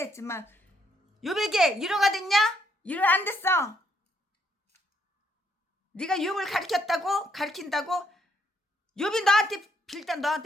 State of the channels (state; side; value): normal; both; correlation 0.72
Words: 욥에게 위로가 됐냐? 위로 안 됐어. 네가 욥을 가르친다고 욥이